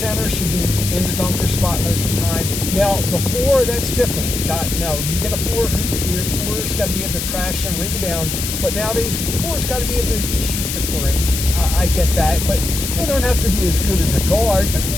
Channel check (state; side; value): noise; left; hiss, 4 dB below the sound